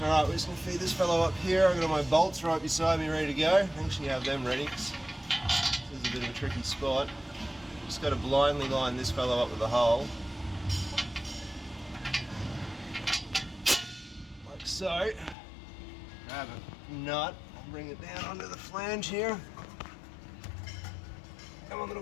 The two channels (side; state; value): right; drops out; at 15.4 s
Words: Alright, we're just going to feed this fellow up here. I've got my bolts right beside me ready to go. I actually have them ready because this is a bit of a tricky spot. Just got to blindly line this fellow up with a hole. Like so. Grab a nut and bring it down onto the flange here. Come on, little